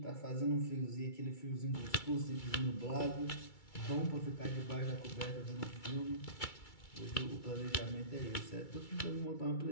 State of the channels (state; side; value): late; right; 2.3 ms